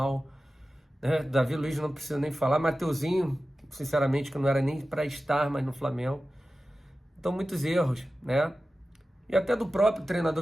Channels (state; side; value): normal; both; correlation 0.94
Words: né? Davi Luiz não precisa nem falar, Mateuzinho, sinceramente, que não era nem para estar mais no Flamengo. Então, muitos erros, né? E até do próprio